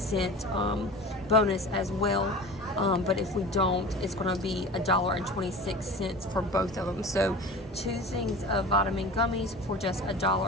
bonus as well. But if we don't, it's going to be $1.26 for both of them. So 2 things of vitamin gummies for just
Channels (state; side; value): normal; both; correlation 0.36